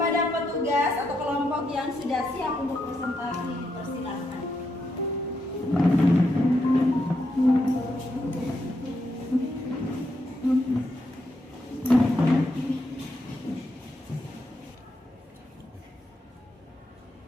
petugas atau kelompok yang sudah siap untuk presentasi, dipersilakan.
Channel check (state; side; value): normal; both; correlation 0.81